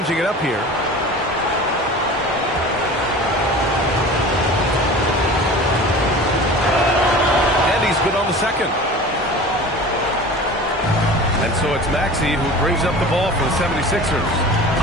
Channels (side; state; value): both; normal; correlation 0.38